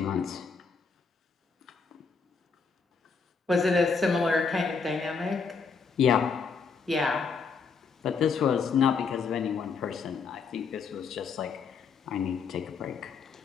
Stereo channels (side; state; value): right; quieter; 5.2 dB